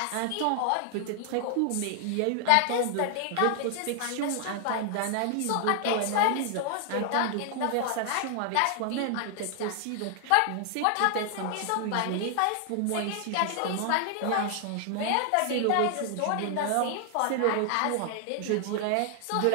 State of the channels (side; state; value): both; different; correlation 0.00